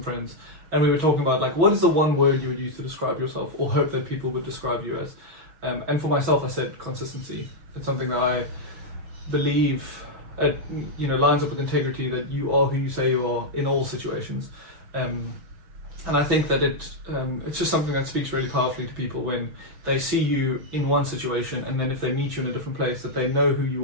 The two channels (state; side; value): late; left; 6.3 ms